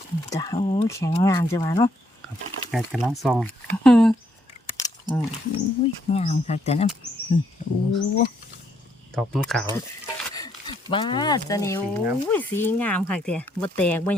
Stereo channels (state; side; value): normal; both; correlation 0.72